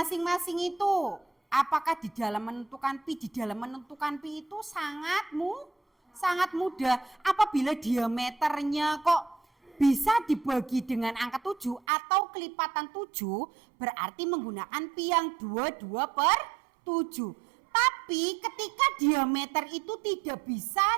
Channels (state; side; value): drops out; left; at 11.8 s